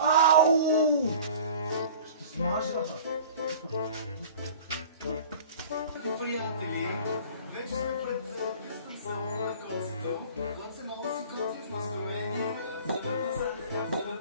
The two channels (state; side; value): inverted; both; correlation -0.43